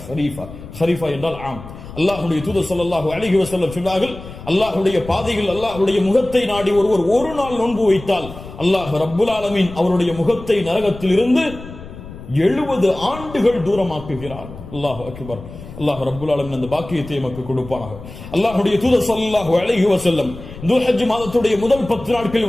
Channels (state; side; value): noise; left; rumble, 14 dB below the sound